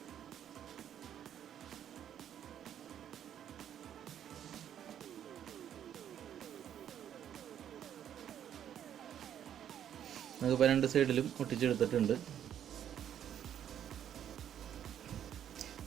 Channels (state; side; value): quieter; left; 9.9 dB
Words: നമുക്കിപ്പോൾ രണ്ട് സൈഡിലും ഒട്ടിച്ചെടുത്തിട്ടുണ്ട്.